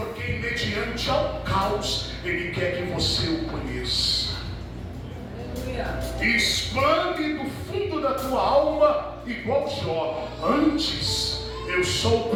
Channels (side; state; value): both; identical; correlation 1.00